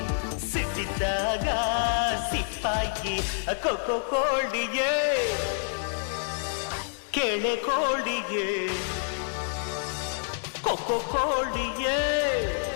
ಸಿಟ್ಟಿದ್ದಾಗ ಸಿಪ್ಪಾಗಿ ಕೊಕ್ಕೋ ಕೋಳಿಗೆ ಕೆಳೆ ಕೋಳಿಗೆ ಕೊಕ್ಕೋ ಕೋಳಿಗೆ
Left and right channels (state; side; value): silent; right; digital silence